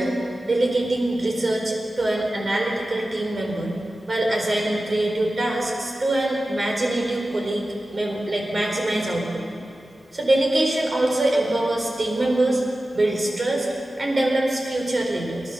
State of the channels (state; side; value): normal; both; correlation 0.94